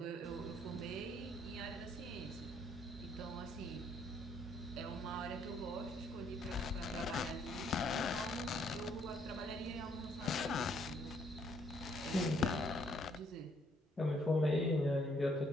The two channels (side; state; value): both; normal; correlation 0.68